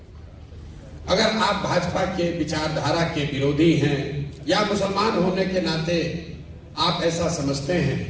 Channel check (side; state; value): both; identical; correlation 1.00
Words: अगर आप भाजपा के विचारधारा के विरोधी हैं या मुसलमान होने के नाते आप ऐसा समझते हैं